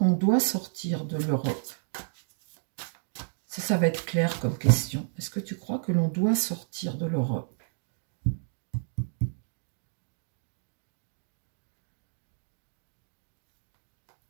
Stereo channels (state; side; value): silent; left; digital silence